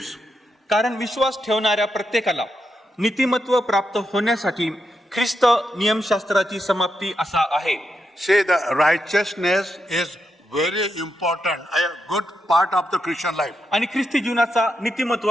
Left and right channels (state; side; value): normal; both; correlation 0.84